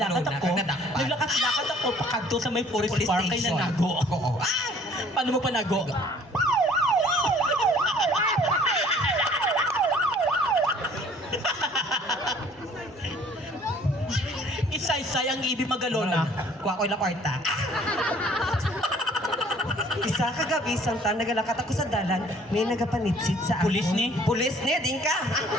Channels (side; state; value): both; normal; correlation 0.55